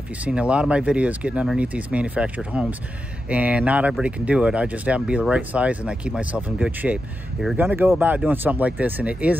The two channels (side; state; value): both; normal; correlation 0.88